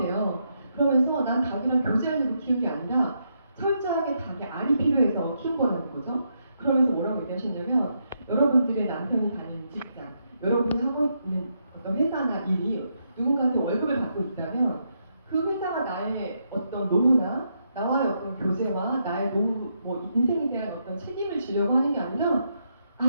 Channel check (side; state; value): both; inverted; correlation -0.79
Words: 그러면서 난 닭이랑 교제하려고 키운 게 아니라 철저하게 닭의 알이 필요해서 키운 거라는 거죠. 그러면서 뭐라고 얘기하셨냐면 여러분들의 남편이 다니는 직장, 여러분이 하고 있는 어떤 회사나 일이 누군가한테 월급을 받고 있다면 그 회사가 나의 어떤 노후나 나와의 어떤 교제와 나의 노후, 인생에 대한 어떤 책임을 지려고 하는 게 아니라